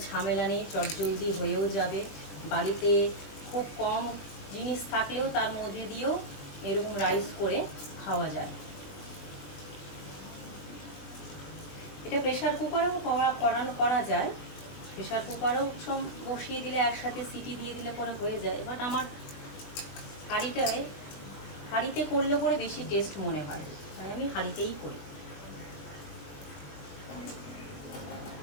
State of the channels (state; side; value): late; right; 21 ms